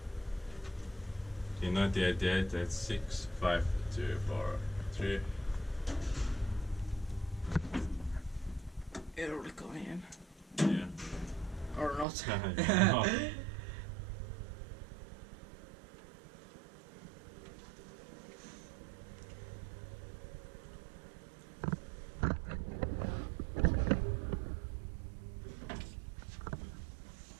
In 1988 it's 6, 5, 2, 4, 3. Early coming in. Yeah. Or not. No.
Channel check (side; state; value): left; drops out; at 12.1 s